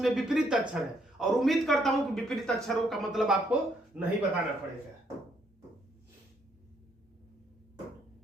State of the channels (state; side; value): normal; both; correlation 0.71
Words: विपरीत अक्षर है। और उम्मीद करता हूं कि विपरीत अक्षरों का मतलब आपको नहीं बताना पड़ेगा।